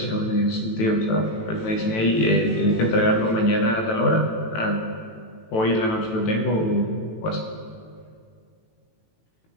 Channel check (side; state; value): right; late; 18 ms